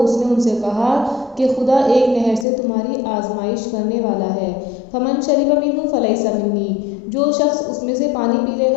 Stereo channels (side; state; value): right; drops out; at 2.5 s